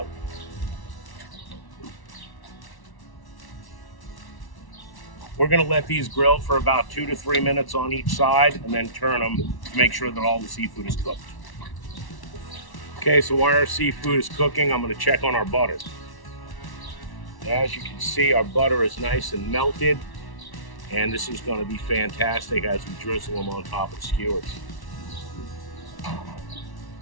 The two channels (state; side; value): late; right; 1.1 ms